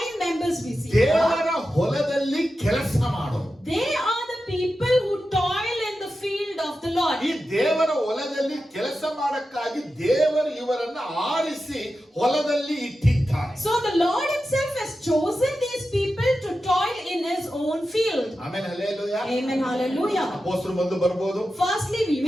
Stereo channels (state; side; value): normal; both; correlation 0.91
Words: members we see? here? ದೇವರ ಹೊಲದಲ್ಲಿ ಕೆಲಸ ಮಾಡೋರು. They are the people who toil in the field of the Lord. ಈ ದೇವರ ಹೊಲದಲ್ಲಿ ಕೆಲಸ ಮಾಡಕ್ಕಾಗಿ ದೇವರು ಇವರನ್ನ ಆರಿಸಿ ಹೊಲದಲ್ಲಿ ಇಟ್ಟಿದ್ದಾರೆ. So the Lord himself has chosen these people to toil in his own field. ಆಮೇಲೆ ಹಲ್ಲೆಲೂಯಾ. Amen, hallelujah. ಅಪೊಸ್ತಲರು ಬಂದು ಬರಬಹುದು, Firstly, we